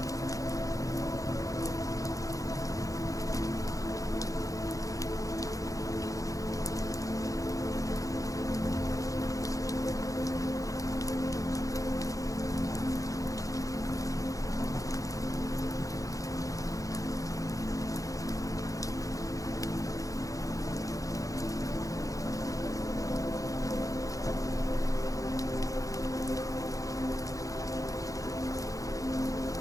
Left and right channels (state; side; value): late; right; 0.16 ms